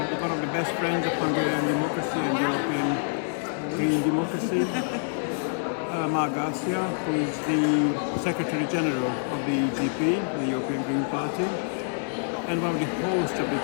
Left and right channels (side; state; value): right; silent; digital silence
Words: with one of the best friends of Hungarian democracy and European green democracy, Mar Garcia, who is the Secretary General of the EGP, the European Green Party, and one of the hosts of this